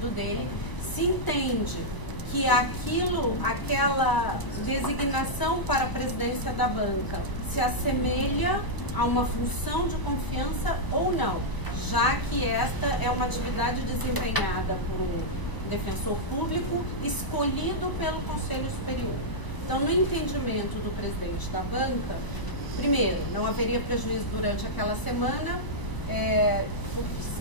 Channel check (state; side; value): late; right; 1.0 ms